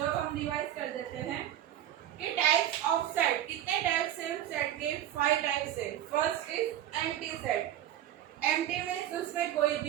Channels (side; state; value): left; quieter; 11.8 dB